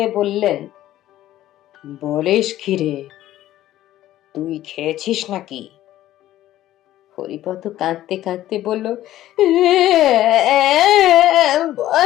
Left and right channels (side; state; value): right; quieter; 13.8 dB